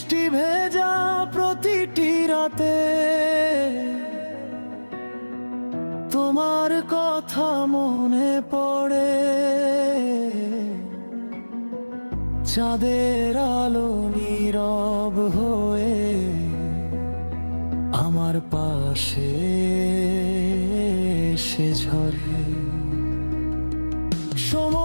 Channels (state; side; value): inverted; both; correlation -1.00